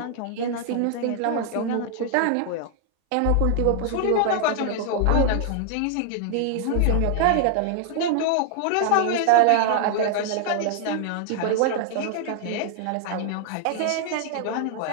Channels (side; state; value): both; different; correlation -0.01